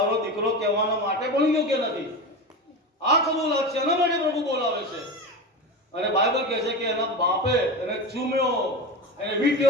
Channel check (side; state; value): both; normal; correlation 0.25